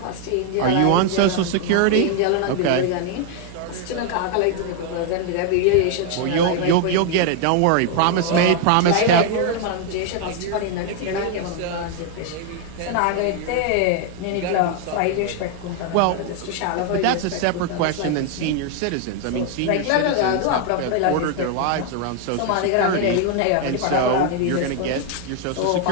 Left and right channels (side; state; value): both; different; correlation 0.00